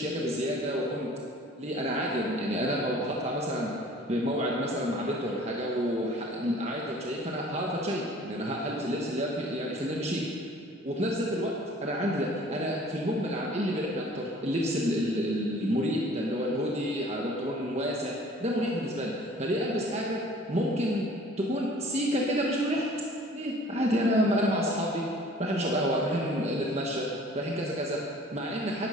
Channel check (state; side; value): normal; both; correlation 0.50